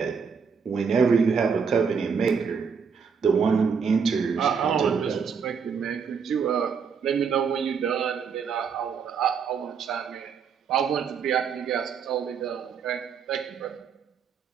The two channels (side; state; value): left; quieter; 6.2 dB